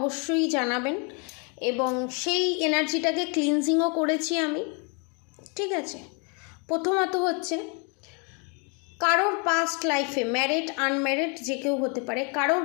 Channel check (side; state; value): right; quieter; 35.2 dB